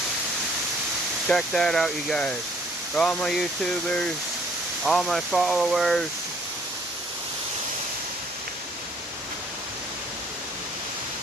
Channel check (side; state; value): both; normal; correlation 0.60